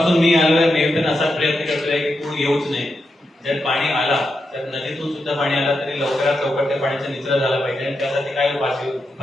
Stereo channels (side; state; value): both; normal; correlation 0.86